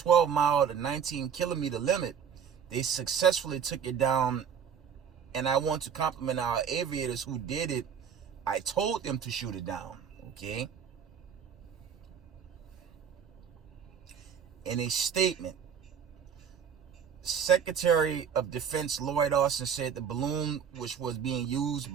mile to 19 kilometer limit. They successfully took it down, and I want to compliment our aviators who did it. I told them to shoot it down, okay? In a statement, Secretary of Defense Lloyd Austin said the balloon, which was being used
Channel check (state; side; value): quieter; left; 7.5 dB